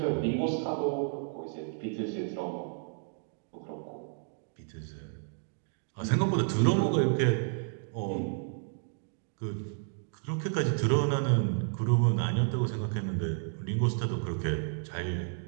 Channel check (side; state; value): left; silent; 57 dB below the other